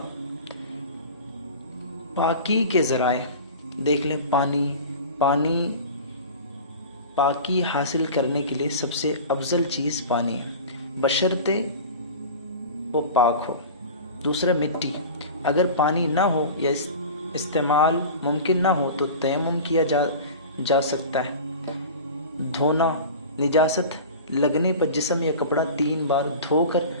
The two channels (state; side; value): inverted; both; correlation -0.35